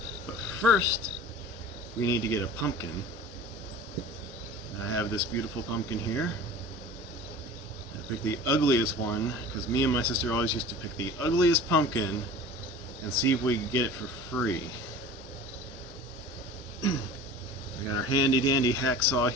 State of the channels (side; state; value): both; normal; correlation 0.39